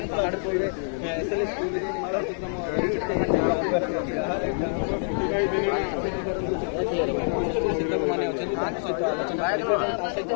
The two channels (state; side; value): silent; right; digital silence